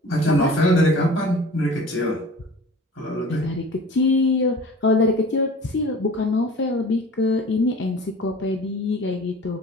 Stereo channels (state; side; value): normal; both; correlation 0.42